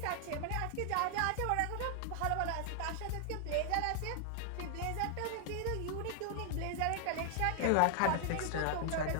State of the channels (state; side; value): different; both; correlation 0.00